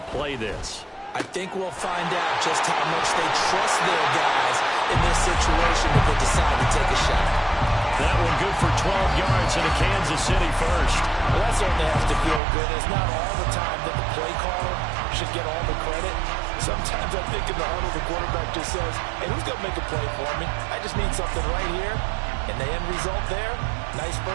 play this. I think we'll find out just how much they trust their guys in this situation if they decide to take a shot. That one good for 12 yards into Kansas City first. Well, that certainly has to feel good. It's not all the time that the play caller should get all the credit. Sometimes I think in the huddle, the quarterback just says, hey, who's going to make a play for me? I just need something right here. And the end result there, Nice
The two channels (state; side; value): drops out; left; at 12.4 s